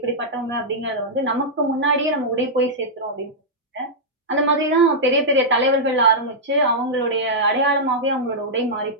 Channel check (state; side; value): normal; both; correlation -0.08